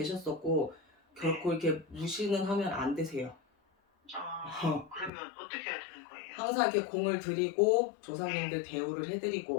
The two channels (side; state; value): right; drops out; at 5.1 s